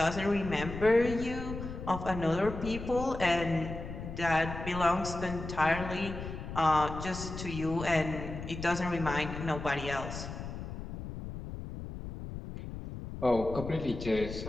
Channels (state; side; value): noise; left; rumble, 8 dB below the sound